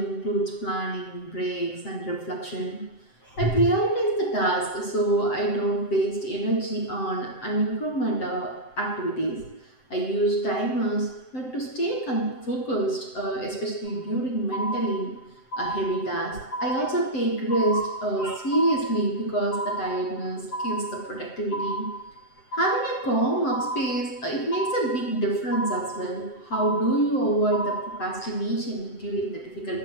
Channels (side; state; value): right; late; 7.8 ms